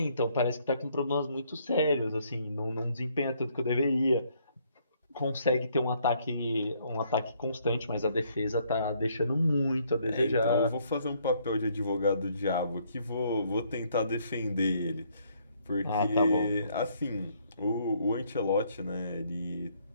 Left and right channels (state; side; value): inverted; both; correlation -0.67